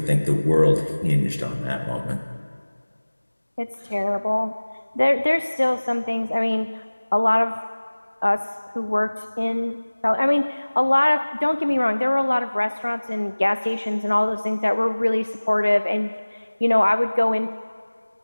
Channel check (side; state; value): both; inverted; correlation -1.00